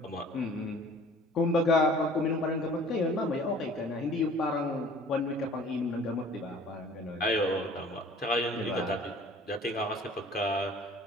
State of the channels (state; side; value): normal; both; correlation 0.49